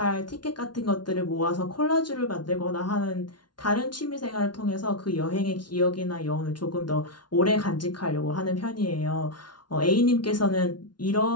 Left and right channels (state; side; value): late; right; 0.70 ms